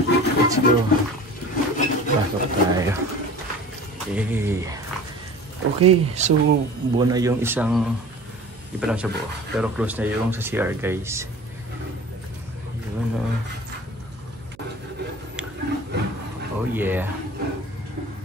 Let's go. Pasok tayo. Hey. Okay, so buo na yung isang, di pa lang siya buo, pero close na yung sa CR guys. Yun, oh yeah.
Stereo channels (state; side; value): noise; right; hum, 24 dB below the sound